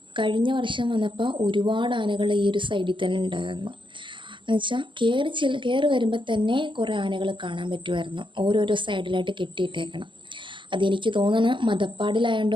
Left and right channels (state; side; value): late; left; 0.24 ms